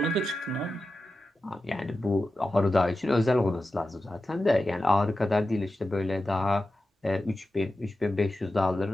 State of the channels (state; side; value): normal; both; correlation 0.92